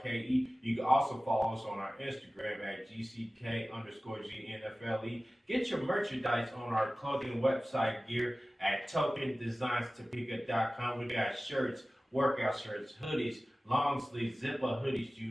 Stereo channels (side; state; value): both; normal; correlation 0.97